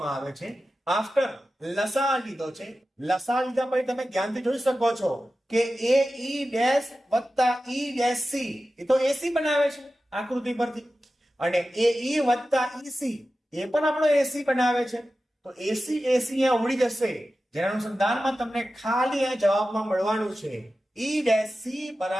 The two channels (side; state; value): both; normal; correlation 0.94